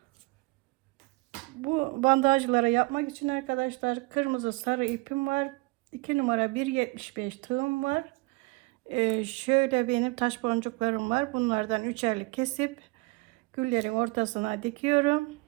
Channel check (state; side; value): quieter; left; 26.3 dB